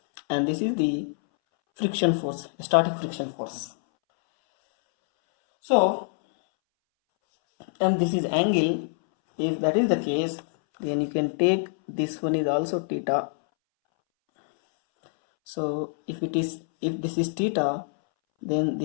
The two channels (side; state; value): right; silent; 61 dB below the other